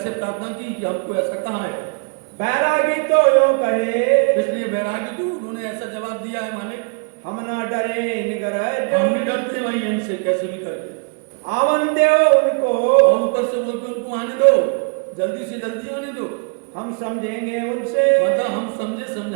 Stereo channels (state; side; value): quieter; left; 35.3 dB